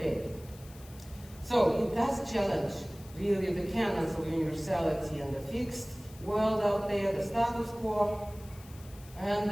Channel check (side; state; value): left; noise; hiss, 21 dB below the sound